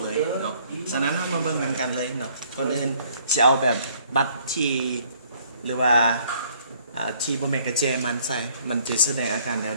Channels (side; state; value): both; inverted; correlation -0.61